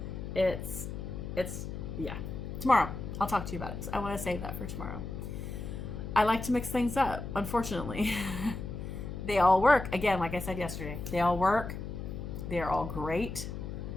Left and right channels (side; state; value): left; noise; hum, 7 dB below the sound